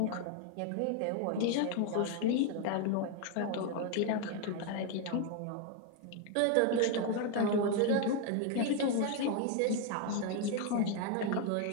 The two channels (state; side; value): different; both; correlation 0.01